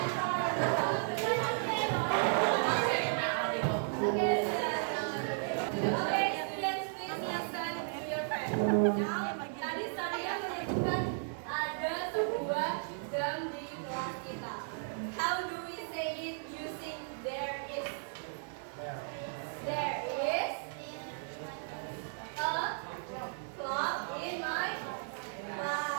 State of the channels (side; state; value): left; silent; digital silence